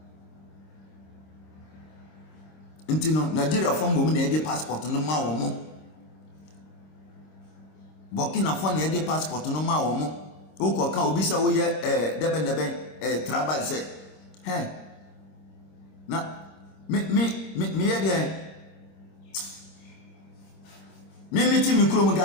Intino Nigeria form mo na e passport no ma wo mo Burkina Faso na e passport no ma wo mo wo ko ka obi se wo ye debe travel se na me ye de me ti mi kuro mo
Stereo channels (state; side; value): late; right; 26 ms